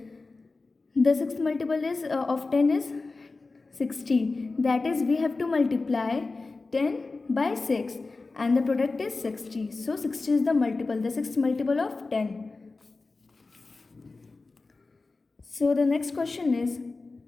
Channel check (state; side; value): quieter; right; 3.7 dB